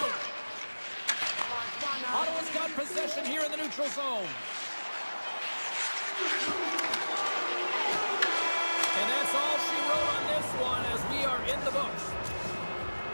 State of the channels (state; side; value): inverted; both; correlation -1.00